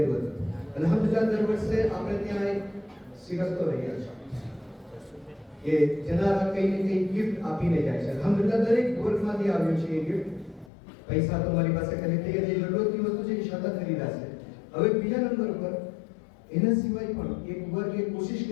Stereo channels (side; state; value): right; drops out; at 10.7 s